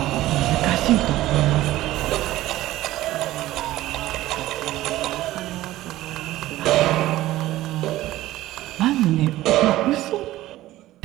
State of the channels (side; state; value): left; quieter; 15.8 dB